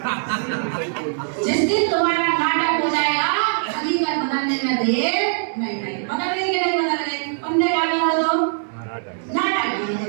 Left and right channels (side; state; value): left; silent; 64 dB below the other